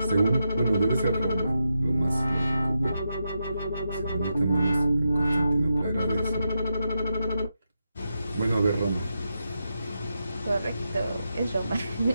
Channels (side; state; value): both; inverted; correlation -0.86